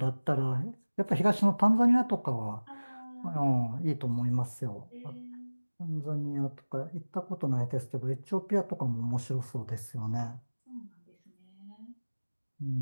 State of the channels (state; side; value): inverted; both; correlation -1.00